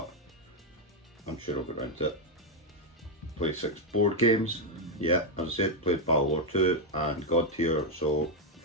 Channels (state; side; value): normal; both; correlation 0.02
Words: I'm sure I'll get around to it. Play 6 board games, yeah, as I said, played Battle Lore 2 and God Tier, so